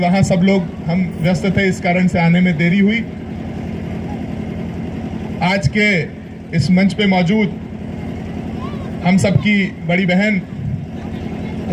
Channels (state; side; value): identical; both; correlation 1.00